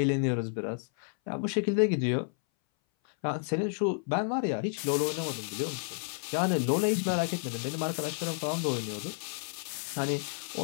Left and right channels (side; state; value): right; silent; 57 dB below the other